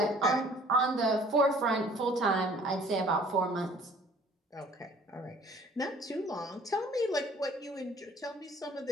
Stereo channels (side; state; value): both; normal; correlation 0.53